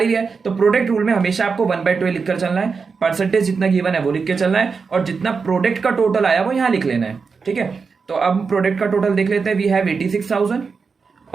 ही लिया है। तो प्रोडक्ट रूल में हमेशा आपको 1/12 लिखकर चलना है, परसेंटेज जितना गिवन है वो लिख के चलना है, और जितना प्रोडक्ट का टोटल आया वो यहाँ लिख लेना है। ठीक है, तो अब प्रोडक्ट का टोटल देख लेते हैं, वी हैव 86,000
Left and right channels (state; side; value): quieter; left; 5.1 dB